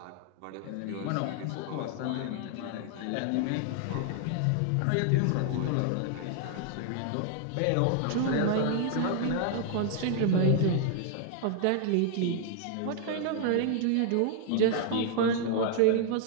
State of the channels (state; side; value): different; both; correlation 0.00